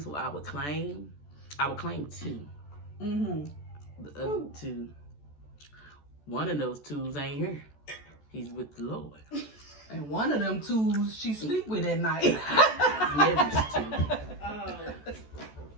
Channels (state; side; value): late; right; 14 ms